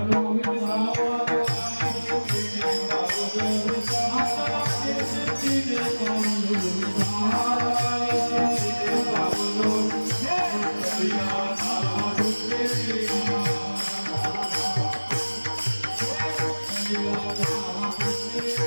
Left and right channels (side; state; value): both; inverted; correlation -1.00